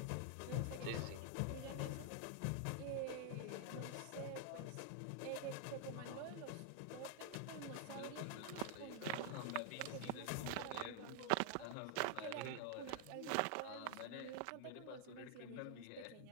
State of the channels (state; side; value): different; both; correlation 0.00